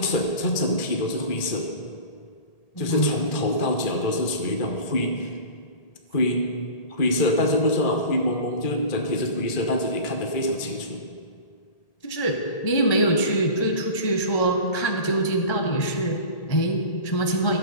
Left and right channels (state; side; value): late; right; 1.8 ms